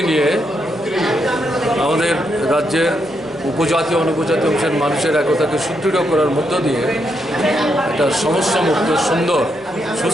নিয়ে আমাদের রাজ্যের উপজাতি অনুপজাতি অংশের মানুষের একতাকে সুদৃঢ় করার মধ্য দিয়ে একটা সমস্যামুক্ত সুন্দর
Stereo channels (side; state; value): right; noise; hum, 29 dB below the sound